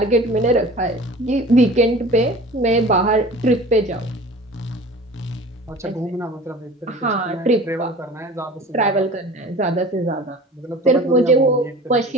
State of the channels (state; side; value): normal; both; correlation 0.41